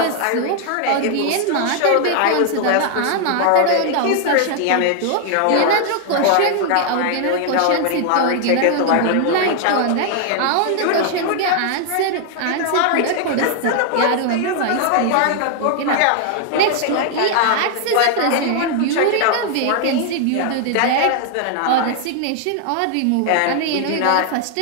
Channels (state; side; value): different; both; correlation 0.00